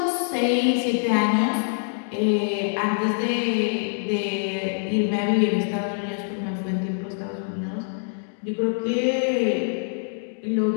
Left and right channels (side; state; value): right; silent; digital silence